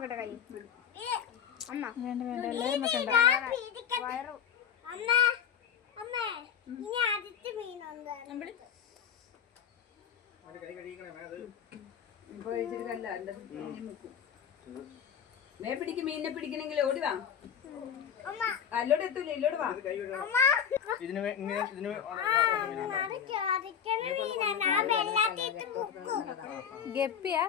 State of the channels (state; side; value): quieter; right; 8.1 dB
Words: കൈ. അമ്മ വേണ്ട വേണ്ട എല്ലാവരും വെക്കണ്ട. മേ പിടിക്കും, മീനിനെ പിടിക്കണമെങ്കിൽ ഓടിവാ. അല്ലോട് എത്തൂല, ഇല്ലോട് വാ. ഗപ്പിയാ?